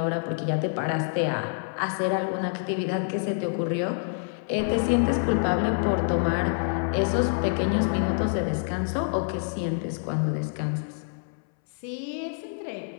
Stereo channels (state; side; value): silent; right; 60 dB below the other